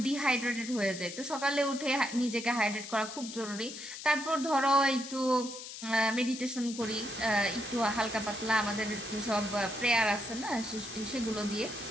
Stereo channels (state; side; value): noise; left; hiss, 10 dB below the sound